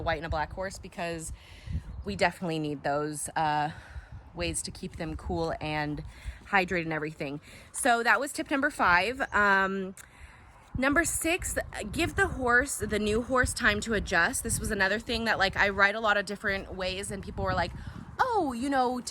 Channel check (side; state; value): both; identical; correlation 1.00